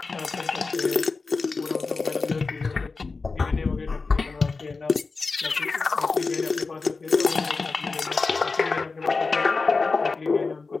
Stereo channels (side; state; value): right; quieter; 4.2 dB